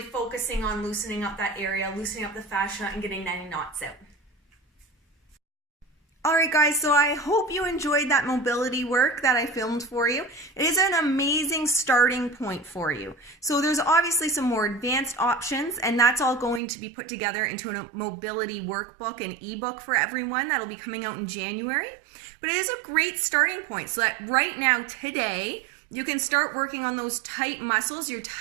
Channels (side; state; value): left; drops out; at 16.6 s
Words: focusing on loosening up that area, loosening up the fascia, and getting any knots out. All right, guys, so I hope you enjoyed that mobility work that I filmed for you. It is an amazing starting point for you. So there's obviously some more advanced options, and that's all going to be put together into a mobility workbook and ebook for everyone. That'll be coming out in January. But it is a great starting point so that right now, today, you can start working on those tight muscles, your